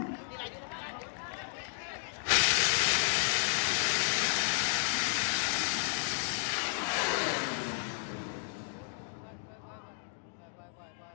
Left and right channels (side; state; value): right; silent; 56 dB below the other